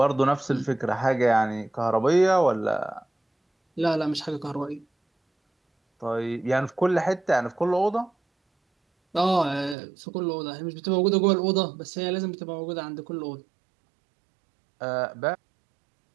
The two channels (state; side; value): drops out; left; at 9.8 s